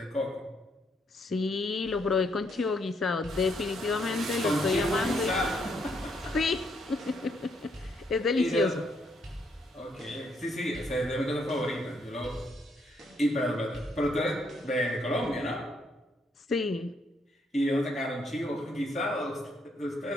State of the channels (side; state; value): both; normal; correlation 0.73